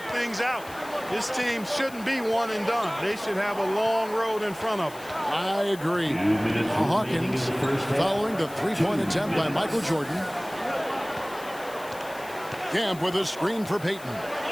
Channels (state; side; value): noise; left; hiss, 19 dB below the sound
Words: things out. This team shouldn't be one and done. They should have a long road in front of them. I agree. Hawkins following the 3-point attempt by Michael Jordan. Kemp with a screen for Payton.